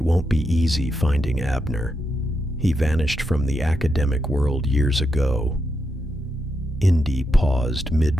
won't be easy finding Abner. He vanished from the academic world years ago. Indy paused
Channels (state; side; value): normal; both; correlation 0.84